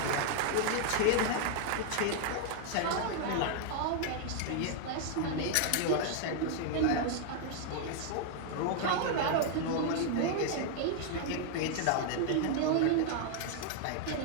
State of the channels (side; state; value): both; different; correlation 0.00